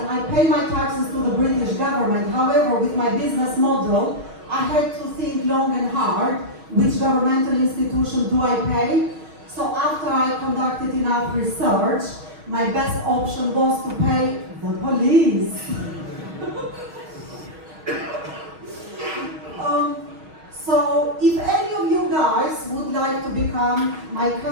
I pay my taxes to the British government. However, with my business model, I had to think long and hard, which governmental institution do I pay? So after I conducted enough research, my best option was to pay the police. So if any of you guys would like to become my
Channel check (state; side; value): late; left; 5.6 ms